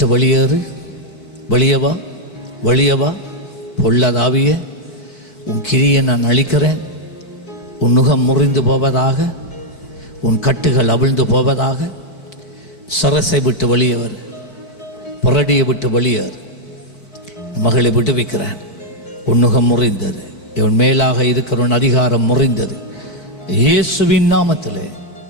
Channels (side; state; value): right; late; 4.5 ms